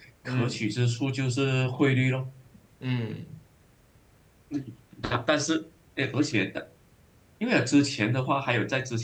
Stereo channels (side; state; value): both; identical; correlation 1.00